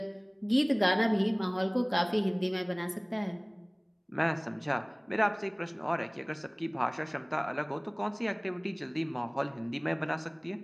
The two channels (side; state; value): both; identical; correlation 1.00